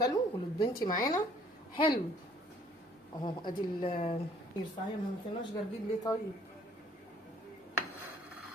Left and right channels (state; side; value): normal; both; correlation 0.59